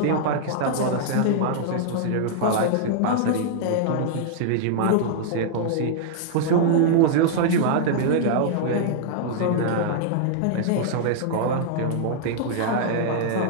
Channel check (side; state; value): both; different; correlation -0.01